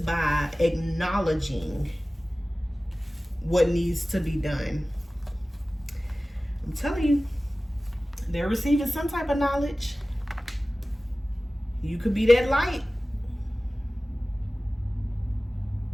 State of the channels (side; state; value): both; normal; correlation 0.97